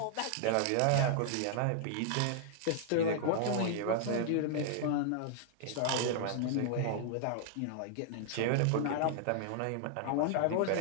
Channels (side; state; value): both; different; correlation -0.01